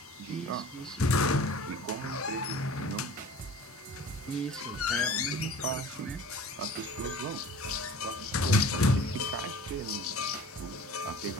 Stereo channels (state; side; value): normal; both; correlation 0.44